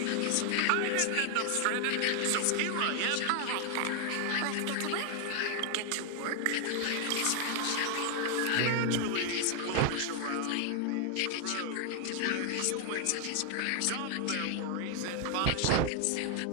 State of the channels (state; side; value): different; both; correlation 0.00